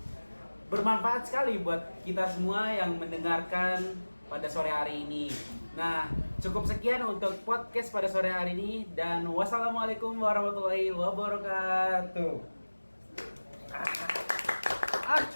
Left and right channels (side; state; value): both; inverted; correlation -1.00